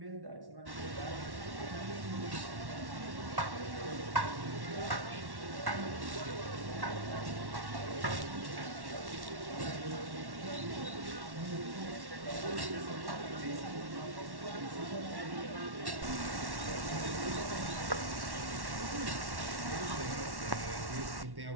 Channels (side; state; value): left; late; 1.1 ms